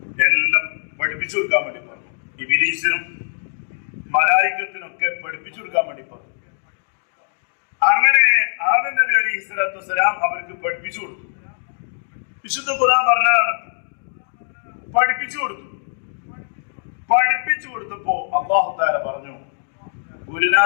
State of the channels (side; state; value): right; silent; digital silence